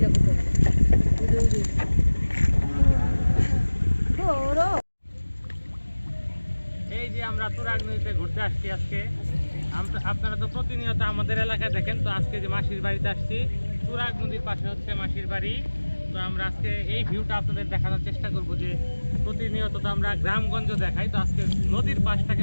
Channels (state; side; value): inverted; both; correlation -1.00